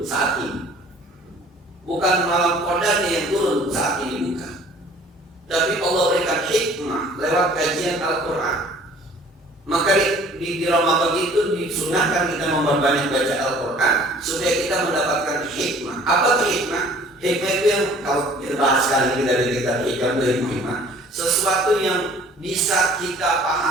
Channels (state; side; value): normal; both; correlation 0.52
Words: saat ini, bukan malam Qadarnya yang turun saat ini, bukan. Tapi Allah berikan hikmah lewat kajian Al-Quran. Maka di Ramadan itu disunahkan kita memperbanyak baca Al-Quran supaya kita mendapatkan hikmah. Apa itu hikmah? Hikmah itu yang kalau kita bahas kali ini dari kita hikmah, sesuatu yang bisa kita